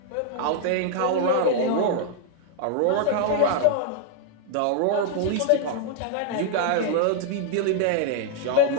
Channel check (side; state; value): both; different; correlation -0.01